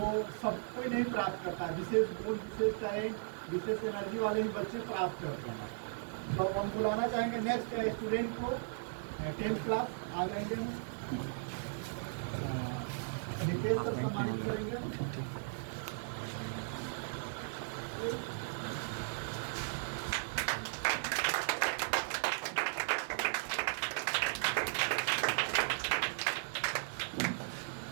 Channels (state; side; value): silent; left; digital silence